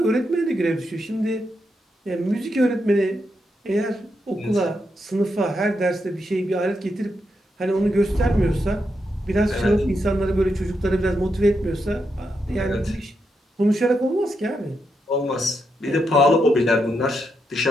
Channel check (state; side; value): normal; both; correlation 0.83